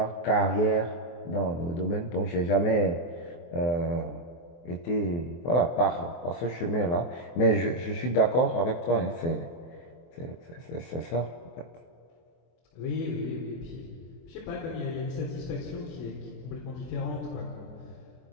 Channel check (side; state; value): right; late; 23 ms